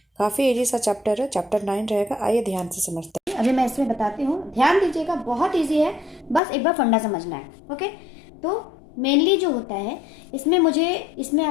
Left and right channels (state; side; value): drops out; right; at 6.4 s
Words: काफ़ी इजी सा चैप्टर है, चैप्टर 9 रहेगा। आइए ध्यान से समझते हैं। अभी मैं इसमें बताती हूँ, ध्यान दीजिएगा, बहुत इजी है, बस एक बार फंडा समझना है। ओके, तो मेनली जो होता है इसमें